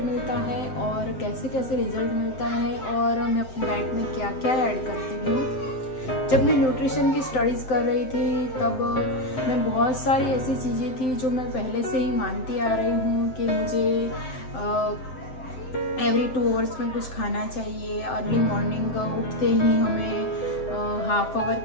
मिलता है और कैसे कैसे रिजल्ट मिलता है और मैं अपनी डाइट में क्या क्या ऐड करती हूँ। जब मैं न्यूट्रिशन की स्टडीज़ कर रही थी तब मैं बहुत सारी ऐसी चीज़ें थी जो मैं पहले से ही मानती आ रही हूँ कि मुझे एवरी 2 आवर्स में कुछ खाना चाहिए। अर्ली मॉर्निंग उठते ही हमें हाफ आवर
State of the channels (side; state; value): right; late; 7.7 ms